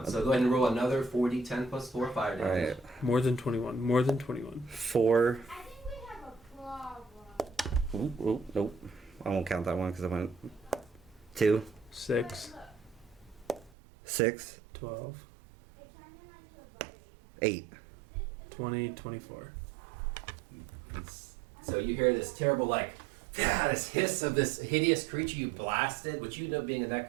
So go ahead and roll another 4d10 plus 4 fire damage. Alright. More than 21. More than 21. 4. I think we have a problem. Ooh, nope. I won't count that one because I went 2, 6, 6, 12, It turned him into a buddy. 8. 20, 24. So you hear this terrible, this hiss of this hideous creature you blasted, which you know, being a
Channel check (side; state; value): left; drops out; at 13.7 s